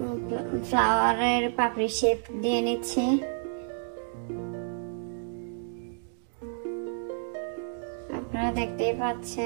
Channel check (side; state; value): left; silent; digital silence